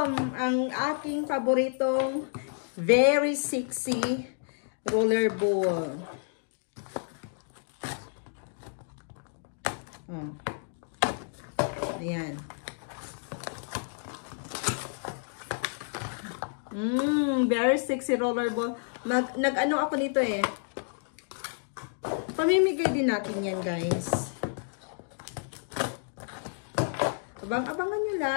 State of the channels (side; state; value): right; silent; digital silence